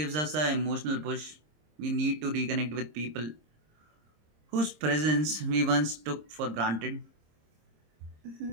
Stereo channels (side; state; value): left; late; 26 ms